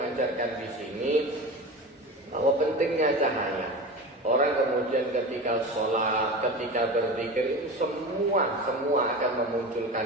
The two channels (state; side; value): normal; both; correlation 0.29